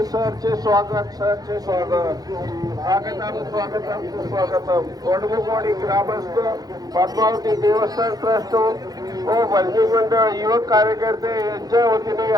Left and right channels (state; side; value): late; left; 0.19 ms